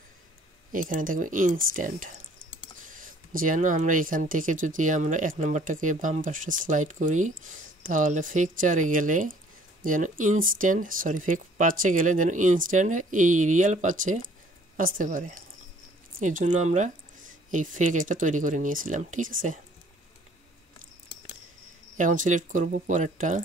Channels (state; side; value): normal; both; correlation 0.57